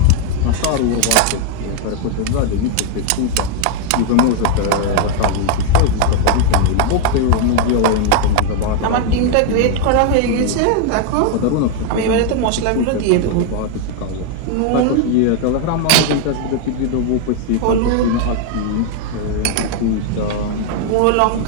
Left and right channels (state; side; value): different; both; correlation 0.01